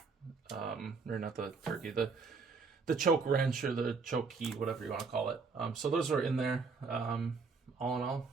or not the turkey, the choke wrench or the choke key, whatever you want to call it. So those are in there. All in all,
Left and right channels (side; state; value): left; quieter; 4.7 dB